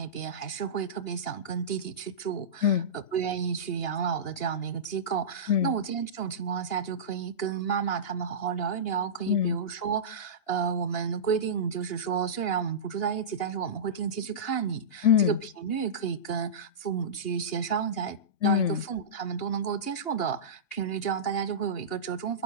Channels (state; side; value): late; right; 2.8 ms